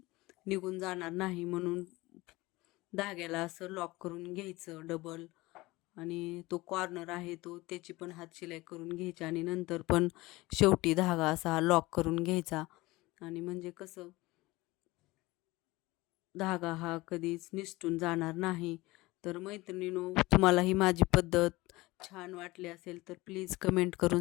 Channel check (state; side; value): quieter; right; 20.6 dB